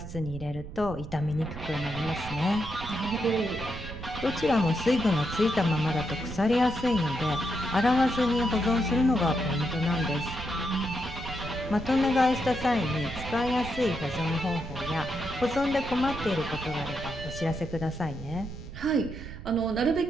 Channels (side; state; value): right; noise; rumble, 11 dB below the sound